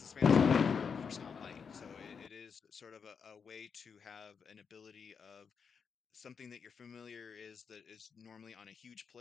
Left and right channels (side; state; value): right; quieter; 6.2 dB